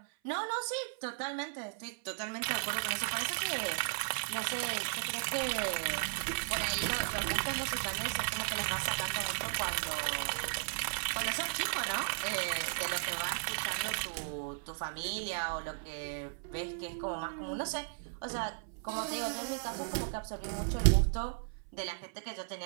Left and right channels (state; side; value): silent; left; 54 dB below the other